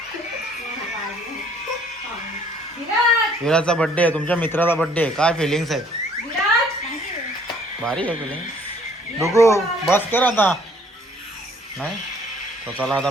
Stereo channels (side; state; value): both; normal; correlation 0.60